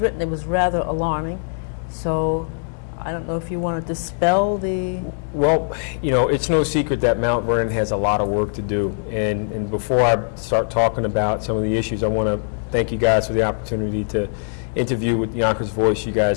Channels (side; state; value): right; silent; digital silence